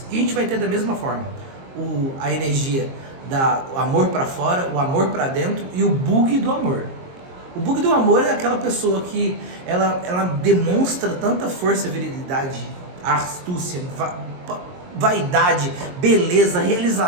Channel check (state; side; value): late; left; 22 ms